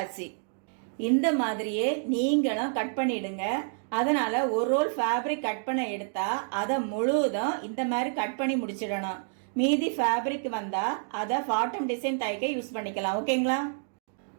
இந்த மாதிரியே நீங்களும் கட் பண்ணிடுங்க. அதனால ஒரு ரோல் ஃபேப்ரிக் கட் பண்ண எடுத்தா அதை முழுவதும் இந்த மாதிரி கட் பண்ணி முடிச்சிடணும். மீதி ஃபேப்ரிக் வந்தா அதை பாட்டம் டிசைன் தைக்க யூஸ் பண்ணிக்கலாம். ஓகேங்களா?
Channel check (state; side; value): silent; left; digital silence